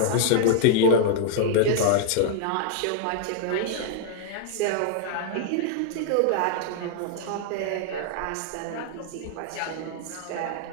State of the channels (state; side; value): different; both; correlation -0.01